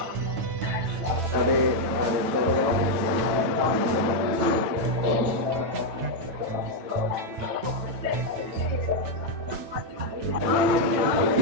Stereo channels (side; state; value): left; late; 9.2 ms